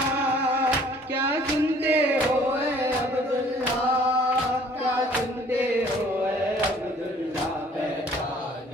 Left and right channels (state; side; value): normal; both; correlation 0.56